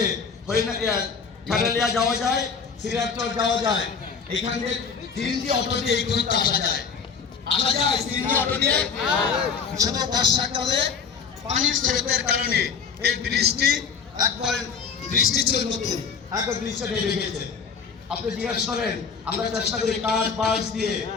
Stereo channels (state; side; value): quieter; right; 5.9 dB